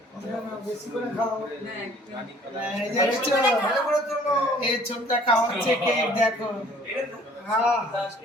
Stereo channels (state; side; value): normal; both; correlation 0.55